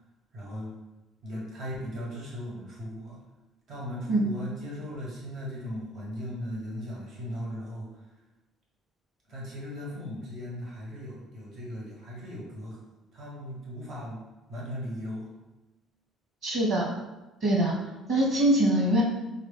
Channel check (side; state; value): both; normal; correlation 0.42